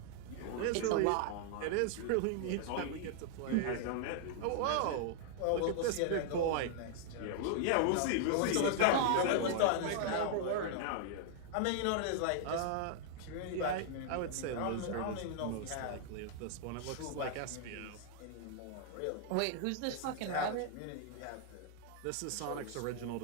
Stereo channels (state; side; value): different; both; correlation -0.01